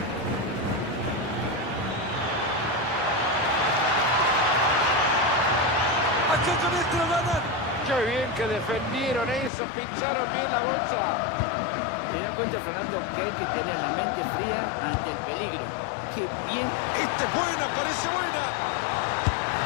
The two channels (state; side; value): drops out; right; at 9.5 s